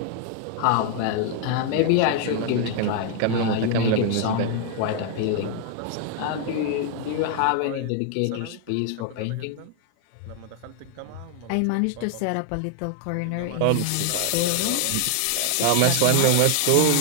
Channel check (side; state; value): both; different; correlation 0.00